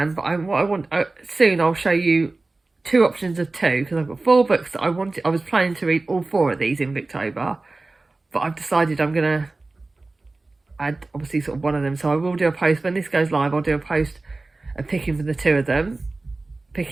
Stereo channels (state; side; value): quieter; left; 3.3 dB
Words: But soon I'll show you 2 options of 2, because I've got 4 books that I was planning to read all 4 of these in Victober, but I've decided I'm gonna add obviously sort of one of them. So I will do a post when this goes live. I'll do a post of picking for the 2 of them,